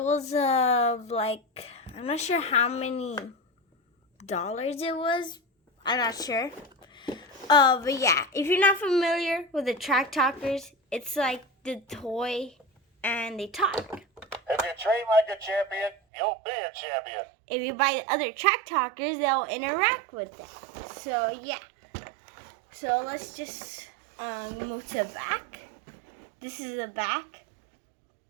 was like, I'm not sure how many dollars it was, I'm not sure. But yeah, if you're not familiar with the Track Talkers, it's like the toy and they talk. If you train like a champion, you'll be a champion. If you buy the other Track Talkers, they'll interact with them. So, yeah. So, let's just move to the back. This is the back.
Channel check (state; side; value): drops out; left; at 16.0 s